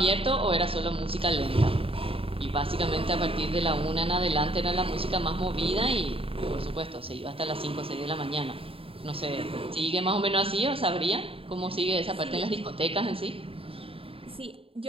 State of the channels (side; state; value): left; late; 0.27 ms